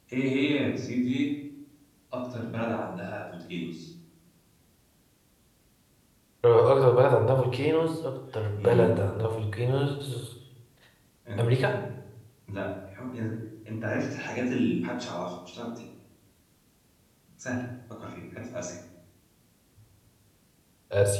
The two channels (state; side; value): identical; both; correlation 1.00